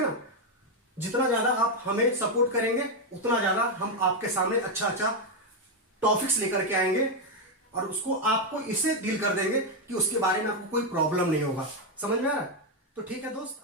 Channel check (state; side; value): normal; both; correlation 0.03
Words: ना। जितना ज्यादा आप हमें सपोर्ट करेंगे उतना ज्यादा हम आपके सामने अच्छा अच्छा टॉपिक्स लेकर के आएंगे और उसको आपको इसे डील कर देंगे कि उसके बारे में आपको कोई प्रॉब्लम नहीं होगा। समझ में आ रहा है? तो ठीक है दोस्त,